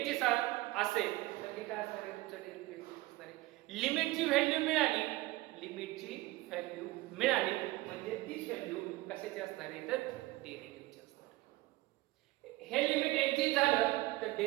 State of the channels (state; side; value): quieter; left; 19.4 dB